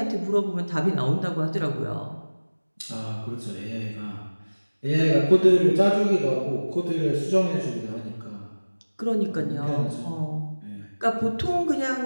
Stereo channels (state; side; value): inverted; both; correlation -1.00